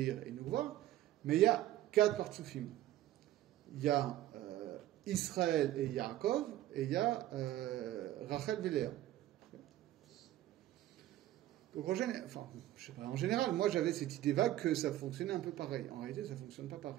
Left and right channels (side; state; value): left; quieter; 14.1 dB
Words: et Nukva, mais il y a 4 partsoufim. Il y a Israël et Yaakov, et il y a Rachel et Léa. Donc en général, moi j'avais cette idée vague que ça fonctionnait un peu pareil. En réalité, ça ne fonctionne pas